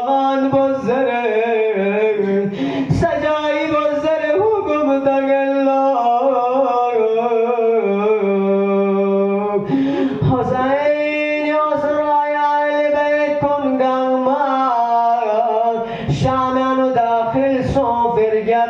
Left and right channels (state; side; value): identical; both; correlation 1.00